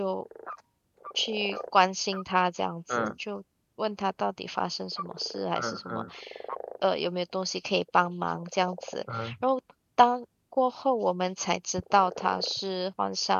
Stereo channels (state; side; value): identical; both; correlation 1.00